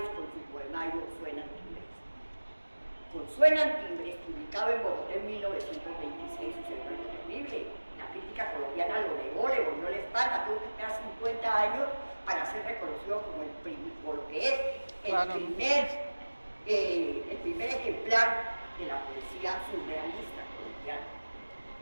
con su poemario Suenan Timbres. Con Suenan Timbres, publicado en Bogotá en 1926, sucedió algo terrible. La crítica colombiana lo negó, le volvió la espalda, tuvo que esperar 50 años para ser reconocido como lo que es el primer ejemplar de la poesía surrealista colombiana.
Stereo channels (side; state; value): both; inverted; correlation -1.00